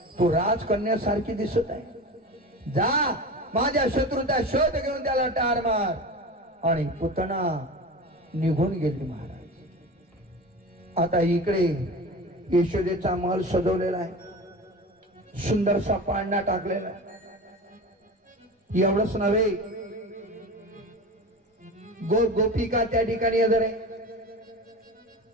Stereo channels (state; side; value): normal; both; correlation 0.31